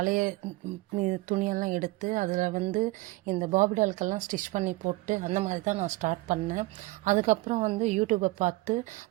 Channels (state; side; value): quieter; left; 20.5 dB